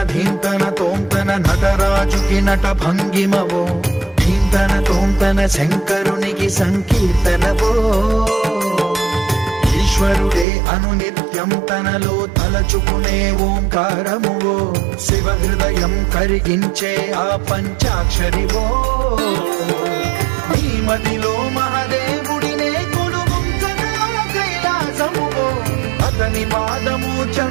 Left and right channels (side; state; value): left; drops out; at 10.5 s